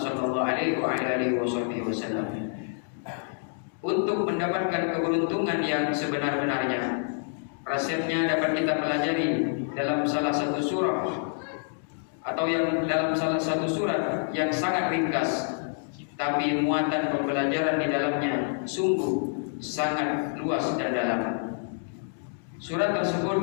sallallahu alaihi wasallam. Untuk mendapatkan keberuntungan yang sebenar-benarnya, resepnya dapat kita pelajari dalam salah satu surah atau yang dalam salah satu surat yang sangat ringkas, tapi muatan pembelajaran di dalamnya sungguh sangat luas dan dalam. Surat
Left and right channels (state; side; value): silent; right; digital silence